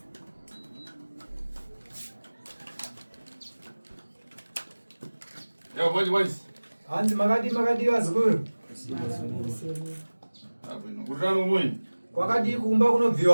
Yo, boys. Andi makadi wazukuru. Kutano mwenye. Kwakadi kumba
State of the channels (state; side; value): inverted; both; correlation -1.00